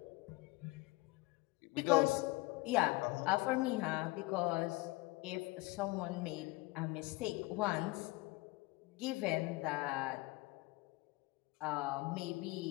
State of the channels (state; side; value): quieter; right; 22.2 dB